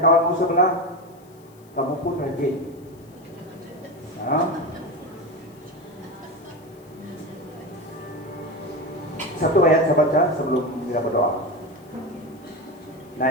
sebelah, kamu pun rajin. Ya. Satu ayat saya baca sebelum kita berdoa.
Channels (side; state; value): left; noise; hiss, 29 dB below the sound